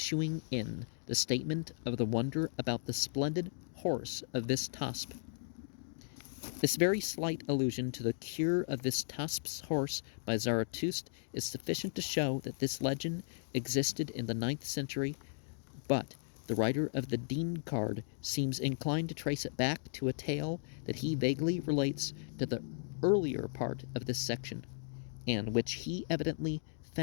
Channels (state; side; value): silent; right; digital silence